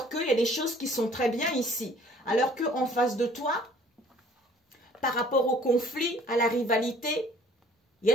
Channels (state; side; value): normal; both; correlation 0.55